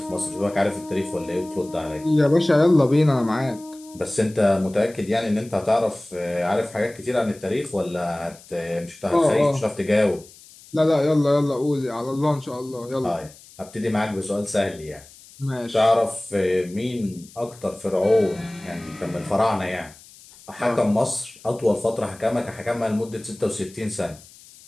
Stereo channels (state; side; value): noise; left; hiss, 22 dB below the sound